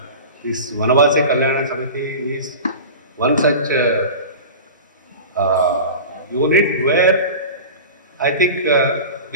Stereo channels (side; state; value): both; inverted; correlation -0.33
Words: this Vanavasi Kalyana Samiti is one such unit where I think